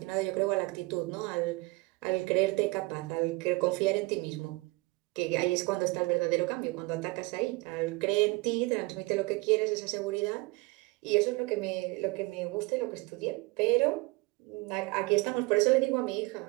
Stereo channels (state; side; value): quieter; left; 24.7 dB